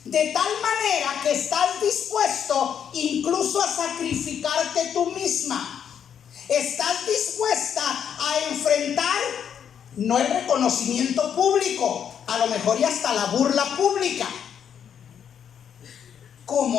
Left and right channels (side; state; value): right; quieter; 8.4 dB